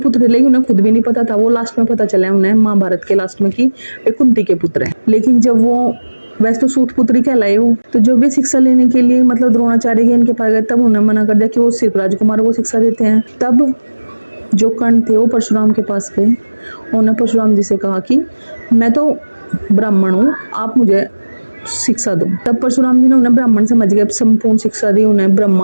थे, लेकिन उन्हें खुद भी नहीं पता था, वो लास्ट में पता चला उन्हें महाभारत के लास्ट में कि वे कुंती के पुत्र हैं। लेकिन जब वो वैसे तो सूत पुत्री कहलाए हो, तो जब वे शिक्षा लेने के लिए मतलब द्रोणाचार्य के इनके पास गए तब उन्हें मना कर दिया कि वो सिर्फ राजकुमारों को शिक्षा देते हैं। तब जो कर्ण थे वो परशुराम के पास गए, उन्होंने परशुराम जी से कहा कि मैं तो ब्राह्मण हूँ, आप मुझे शिक्षा दो। तब परशुराम जी ने उन्हें ब्राह्मण समझ गए, संपूर्ण शिक्षा दी, उन्हें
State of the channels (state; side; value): inverted; both; correlation -1.00